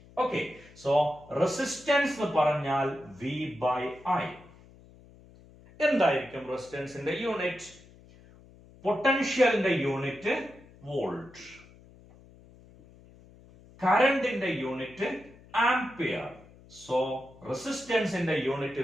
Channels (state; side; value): noise; left; hum, 23 dB below the sound